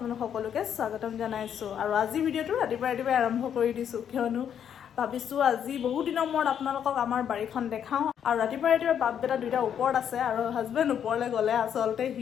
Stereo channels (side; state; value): right; quieter; 8.8 dB